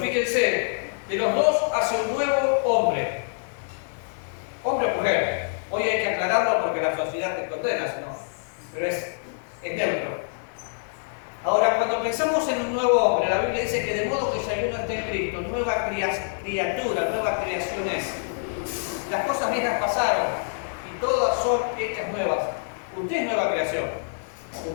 de los dos hace un nuevo hombre. Hombre o mujer. Hoy hay que aclararlo porque la sociedad te condena, ¿no? Pero es neutro. Ahora, cuando pensamos en un nuevo hombre, la Biblia dice que de modo que si alguno está en Cristo, nueva criatura, nueva creación es. Las cosas viejas pasaron y todas son hechas nuevas. Usted es nueva creación.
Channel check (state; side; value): silent; right; digital silence